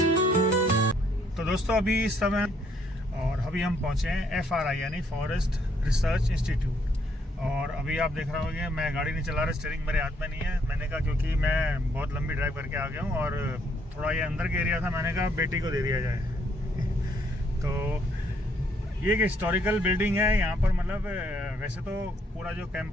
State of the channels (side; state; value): both; normal; correlation 0.69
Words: दोस्तों अभी इस समय और अभी हम पहुंचे हैं FRI यानी फॉरेस्ट रिसर्च इंस्टीट्यूट। और अभी आप देख रहे होंगे मैं गाड़ी नहीं चला रहा, स्टीयरिंग मेरे हाथ में नहीं है। मैंने कहा क्योंकि मैं बहुत लंबी ड्राइव करके आ गया हूं और थोड़ा ये अंदर का एरिया था, मैंने कहा बेटी को दे दिया जाए। तो ये एक हिस्टोरिकल बिल्डिंग है यहाँ पर, मतलब वैसे तो पूरा जो